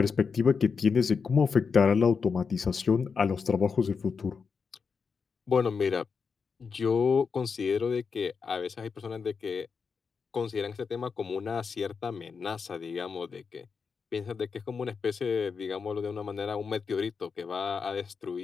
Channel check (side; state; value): right; quieter; 5.5 dB